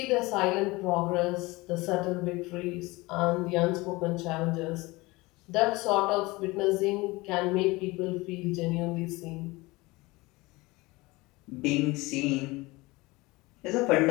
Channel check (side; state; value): right; quieter; 22.2 dB